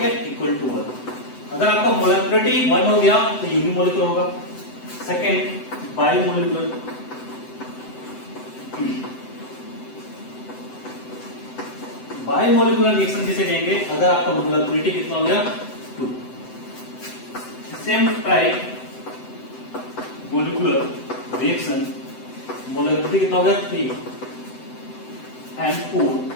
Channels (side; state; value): right; late; 7.9 ms